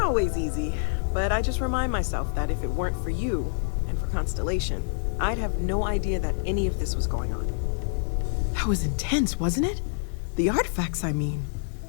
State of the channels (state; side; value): silent; right; digital silence